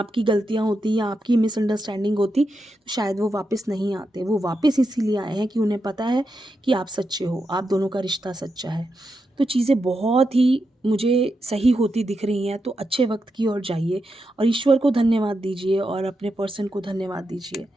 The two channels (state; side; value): normal; both; correlation 0.86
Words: गलतियां होती या आपकी मिसअंडरस्टैंडिंग होती, तो शायद वो वापस नहीं आते। वो वापस इसीलिए आए हैं कि उन्हें पता है कि आप सच्चे हो, आप दोनों का रिश्ता सच्चा है। तो चीज़ें बहुत ही मुझे सही होती दिख रही हैं। तो अच्छे वक्त की ओर जाइए, और ईश्वर को धन्यवाद दीजिए, और अपने पर्सन को धन्यवाद दीजिए।